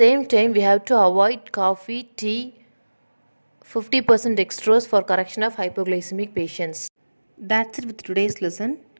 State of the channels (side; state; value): both; inverted; correlation -1.00